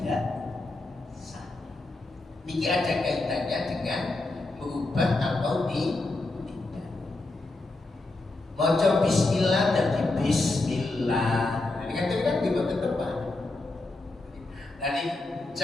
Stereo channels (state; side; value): quieter; right; 3.0 dB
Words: sah. Ini ada kaitannya dengan merubah atau maca bismillah dan bismillah. Ini kan di tempat. Jadi